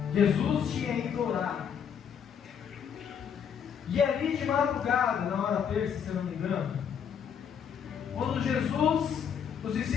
Jesus tinha ido orar. E ali de madrugada, na hora terça, se eu não me engano, quando Jesus, os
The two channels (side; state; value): right; quieter; 7.7 dB